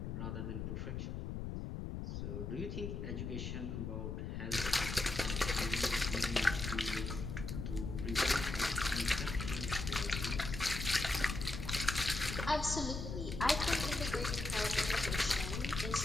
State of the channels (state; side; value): noise; left; rumble, 4 dB below the sound